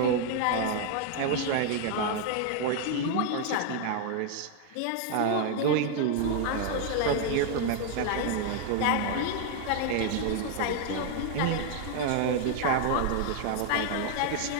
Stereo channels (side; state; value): both; different; correlation 0.00